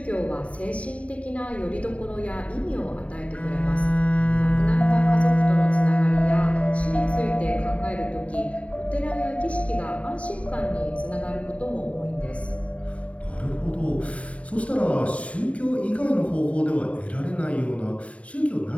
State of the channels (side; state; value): right; late; 0.065 ms